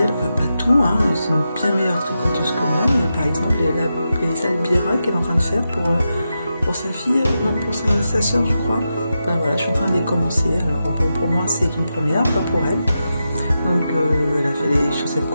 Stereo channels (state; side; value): inverted; both; correlation -0.89